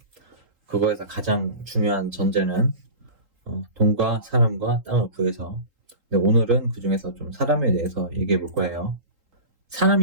그거에서 가장 중요한 전제는 돈과 사람과 땅을 구해서. 근데 오늘은 그 중에서 좀 사람에 대해서 얘기해 볼 거예요.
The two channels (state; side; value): late; left; 3.8 ms